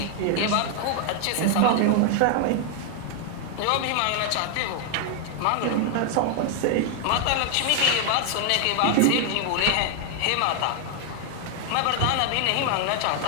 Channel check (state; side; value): different; both; correlation 0.00